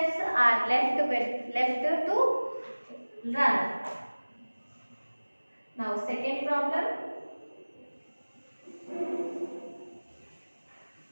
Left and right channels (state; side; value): inverted; both; correlation -1.00